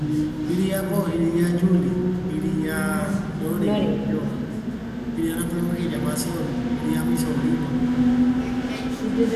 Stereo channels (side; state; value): both; identical; correlation 1.00